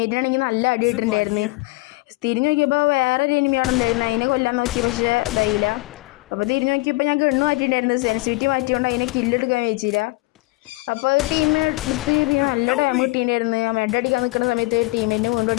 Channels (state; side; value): quieter; right; 22.8 dB